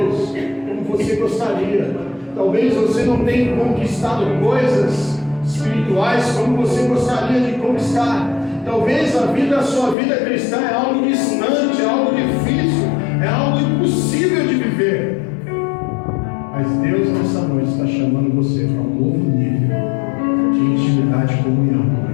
como você gostaria. Talvez você não tenha conquistado coisas espirituais como você gostaria de conquistar. Talvez a sua vida cristã é algo distante, é algo difícil, é algo impossível de viver. Mas Deus nessa noite está chamando você para um novo nível de intimidade e comunhão com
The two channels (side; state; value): right; drops out; at 10.0 s